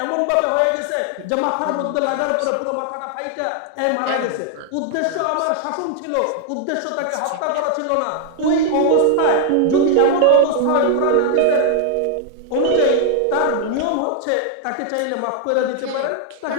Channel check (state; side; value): different; both; correlation 0.00